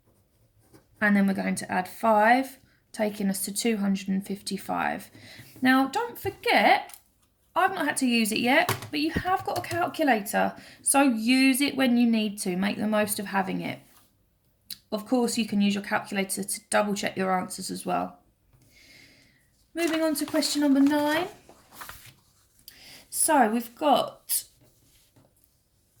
And then we're going to add 5, taking us to 255. Now, don't forget, I've not had to use it yet, but you have got a calculator. So use it when you need to. Make the most of having it. Of course, you can use your calculator to double check your answers as well. Moving on to question number 9. So we've got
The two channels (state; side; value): identical; both; correlation 1.00